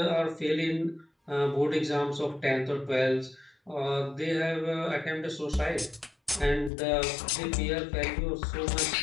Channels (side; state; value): right; drops out; at 6.7 s